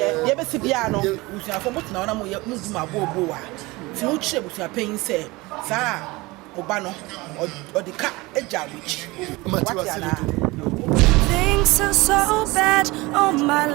ye be si bia no busuafo mo tena na mo ye mu ma bobo wa ti wo kire busuapan se sa oba no odika eja rich Things are so bad, oh my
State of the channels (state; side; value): quieter; left; 22.4 dB